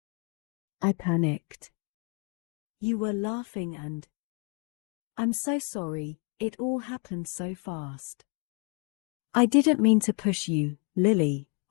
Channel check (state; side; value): quieter; right; 36.3 dB